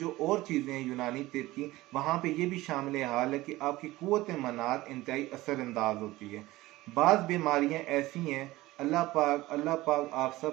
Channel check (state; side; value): quieter; left; 18.3 dB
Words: और चीज़ें हैं यूनानी तिब की, वहाँ पे ये भी शामिल हाल है कि आपकी कुव्वत मनात इंतहाई असरअंदाज होती है। बाज़ बीमारियाँ ऐसी हैं, अल्लाह पाक आप